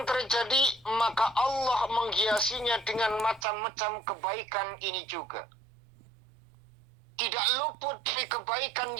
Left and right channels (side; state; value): left; drops out; at 3.5 s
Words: terjadi? Maka Allah menghiasinya dengan macam-macam kebaikan ini juga. Tidak luput dari kebaikan